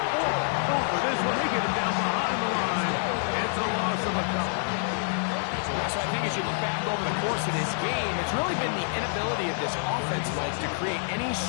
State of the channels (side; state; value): right; silent; digital silence